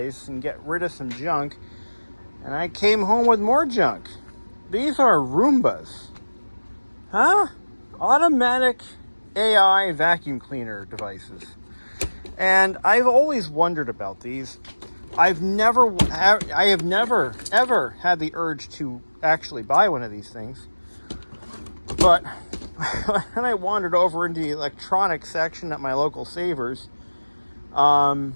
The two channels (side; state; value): both; inverted; correlation -1.00